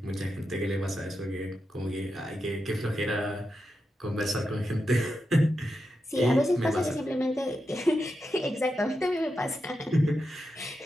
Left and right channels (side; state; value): both; normal; correlation 0.87